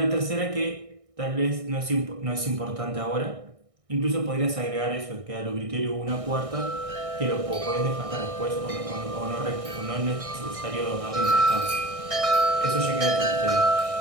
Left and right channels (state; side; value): late; left; 1.6 ms